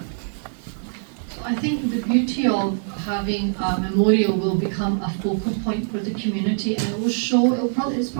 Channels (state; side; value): silent; left; 63 dB below the other